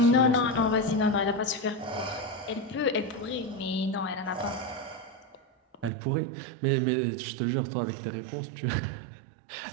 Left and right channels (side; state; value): left; drops out; at 5.9 s